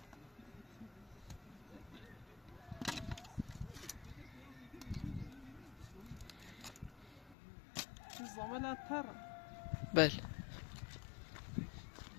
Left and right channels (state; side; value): drops out; right; at 7.4 s